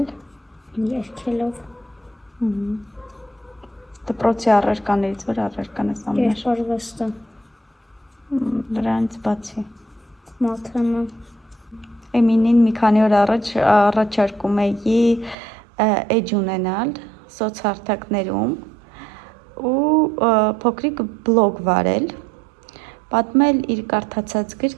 երգելով, դպրոցի առարկաներից որ առարկան ես ամենաշ Երկարվեստը դրանից բացի Մաթեմը Էմինին մի քանի օր առաջ առաջարկում էի էջ ունենալ սոցհարթակներում ու փոքրիկ բլոգ վարել պատմել իր կարդացած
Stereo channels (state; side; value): drops out; left; at 15.4 s